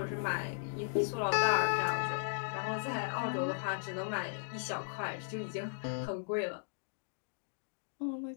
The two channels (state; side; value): silent; right; digital silence